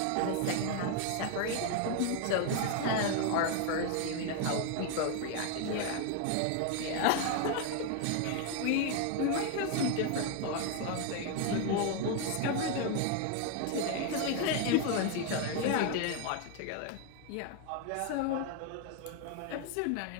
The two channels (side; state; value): both; different; correlation 0.01